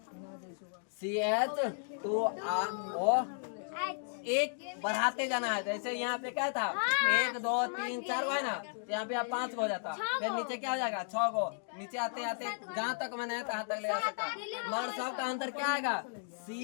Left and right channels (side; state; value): right; silent; digital silence